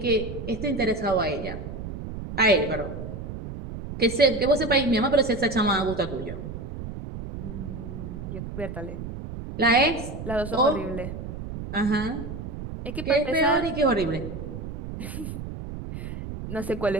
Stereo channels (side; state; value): right; noise; rumble, 8 dB below the sound